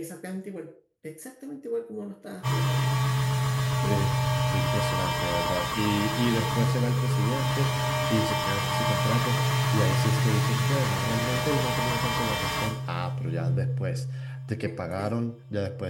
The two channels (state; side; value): identical; both; correlation 1.00